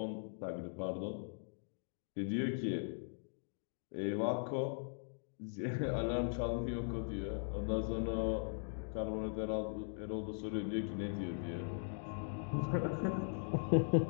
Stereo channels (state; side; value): silent; right; digital silence